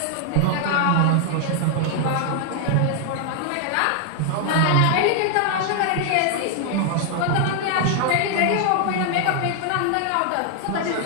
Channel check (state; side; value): different; both; correlation 0.00